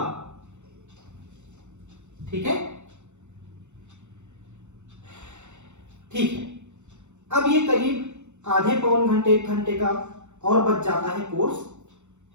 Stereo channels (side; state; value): left; late; 0.84 ms